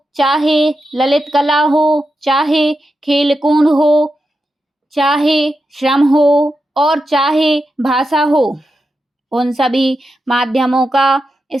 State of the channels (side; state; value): both; normal; correlation 0.88